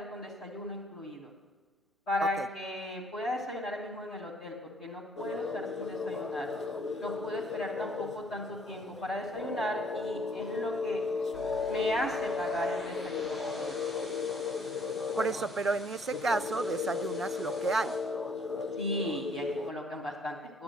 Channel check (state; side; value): normal; both; correlation 0.62